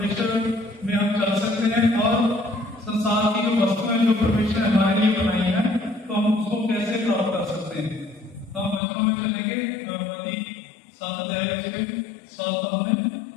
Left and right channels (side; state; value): right; drops out; at 8.8 s